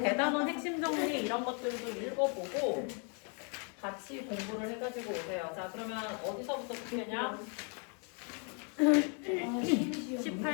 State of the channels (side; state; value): right; quieter; 38.6 dB